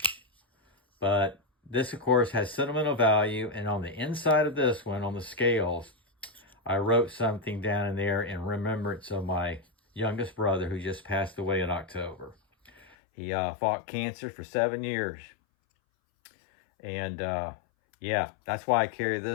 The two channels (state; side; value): drops out; right; at 13.0 s